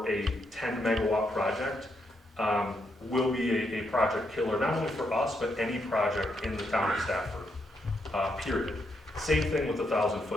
a 10 megawatt project will be a project killer, not only for us, but any project in the town of Stafford, period. Same thing with the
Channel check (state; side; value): normal; both; correlation 0.79